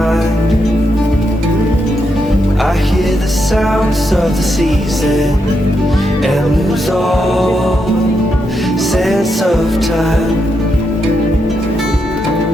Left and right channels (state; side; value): normal; both; correlation 0.82